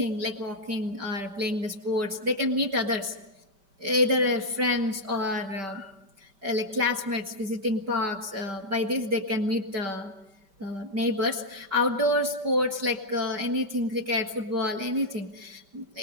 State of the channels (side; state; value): left; late; 5.1 ms